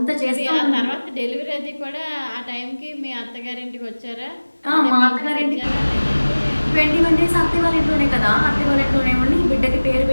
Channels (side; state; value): both; inverted; correlation -1.00